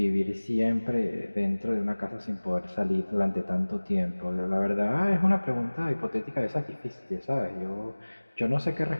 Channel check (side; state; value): both; inverted; correlation -1.00